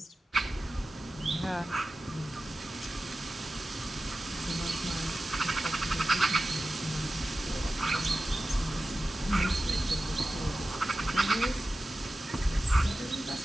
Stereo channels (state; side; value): normal; both; correlation 0.95